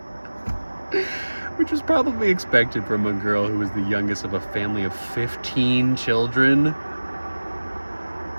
Which was probably expected from a girl who was the youngest of a family of 15 children.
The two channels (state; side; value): inverted; both; correlation -1.00